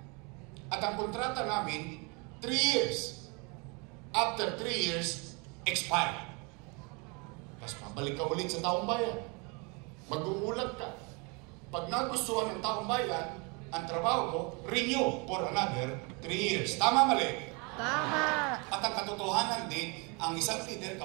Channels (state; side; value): quieter; left; 31.0 dB